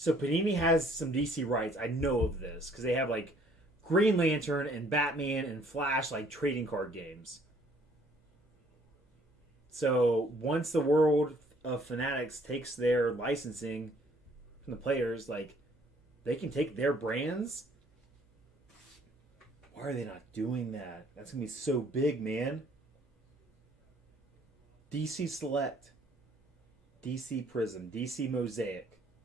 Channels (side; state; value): both; normal; correlation 0.61